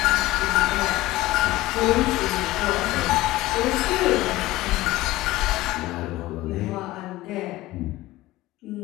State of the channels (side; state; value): right; quieter; 17.4 dB